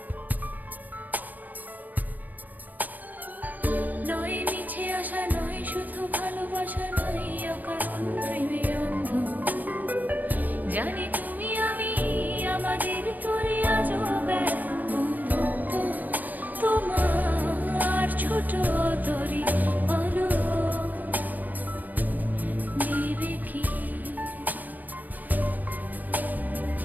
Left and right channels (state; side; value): late; left; 0.082 ms